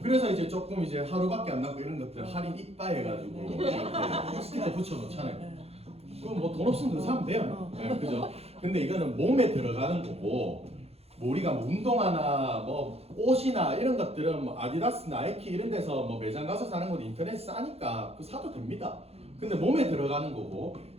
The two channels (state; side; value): late; left; 0.29 ms